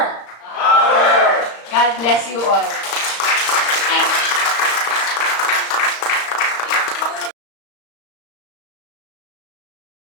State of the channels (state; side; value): late; right; 35 ms